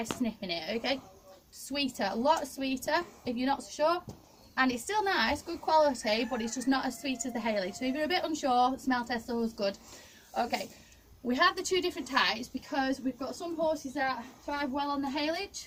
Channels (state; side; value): identical; both; correlation 1.00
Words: sniffing it. Okay, sweeter, a lot sweeter if you're not so sure, and it's still nice, good quality, but it's just not as sweet as the haylage. So if you're a bit unsure, smell test always good. Okay, we have the two different types because we've got some horses that thrive well on the